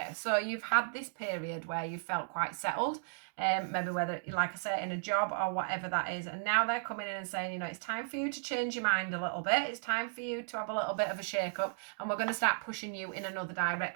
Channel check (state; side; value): silent; left; digital silence